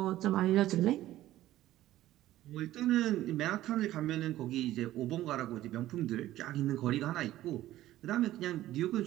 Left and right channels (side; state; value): left; quieter; 14.6 dB